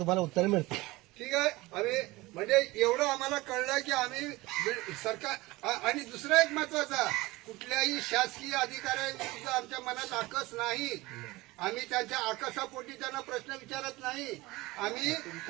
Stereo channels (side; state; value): left; quieter; 20.6 dB